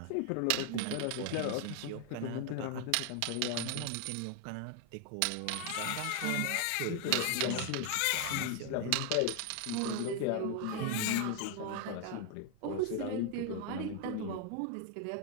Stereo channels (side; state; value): both; different; correlation 0.01